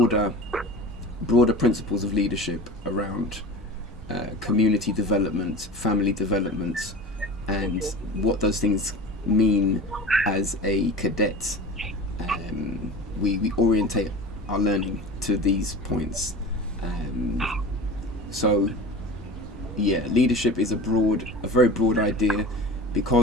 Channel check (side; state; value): both; normal; correlation 0.35